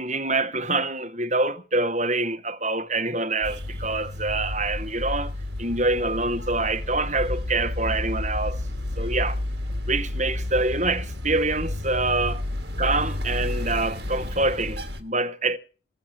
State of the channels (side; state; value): both; normal; correlation 0.22